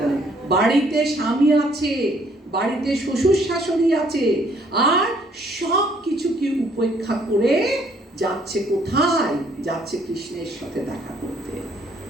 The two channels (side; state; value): both; normal; correlation 0.64